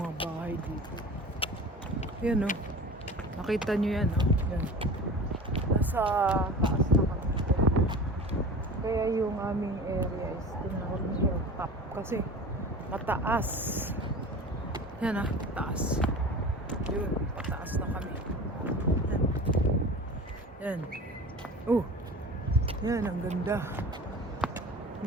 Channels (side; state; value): both; normal; correlation 0.37